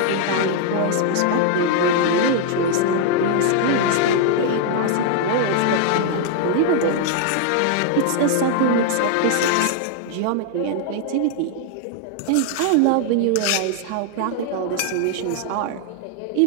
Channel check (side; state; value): both; different; correlation 0.00